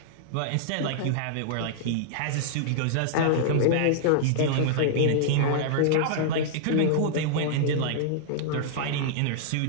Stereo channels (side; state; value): both; different; correlation -0.02